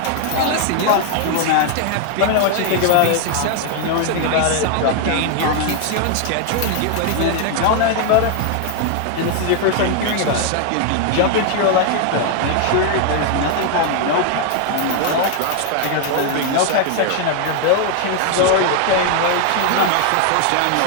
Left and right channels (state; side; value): different; both; correlation 0.00